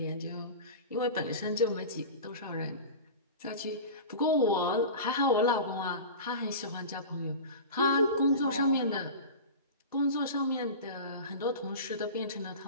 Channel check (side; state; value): both; inverted; correlation -0.32